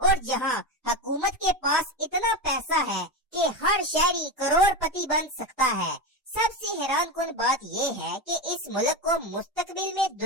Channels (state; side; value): normal; both; correlation 0.18